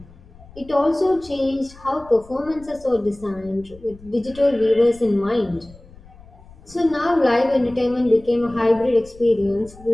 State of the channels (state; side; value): noise; left; rumble, 22 dB below the sound